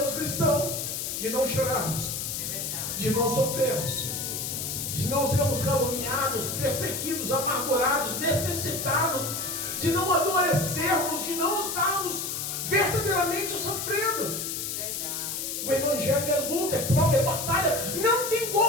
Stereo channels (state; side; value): noise; left; hiss, 4 dB below the sound